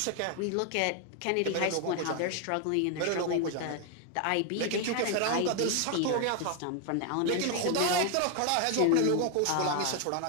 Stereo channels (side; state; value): both; different; correlation 0.00